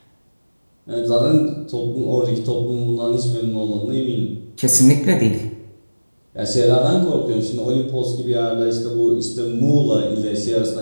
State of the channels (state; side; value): inverted; both; correlation -1.00